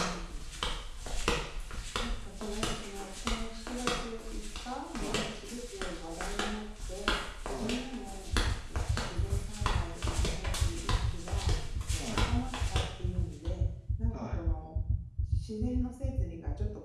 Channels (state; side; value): identical; both; correlation 1.00